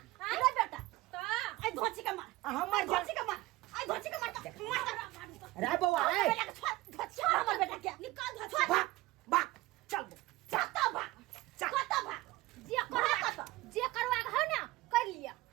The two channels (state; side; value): quieter; left; 19.1 dB